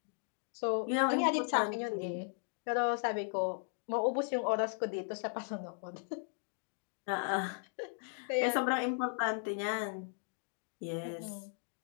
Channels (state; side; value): silent; right; 53 dB below the other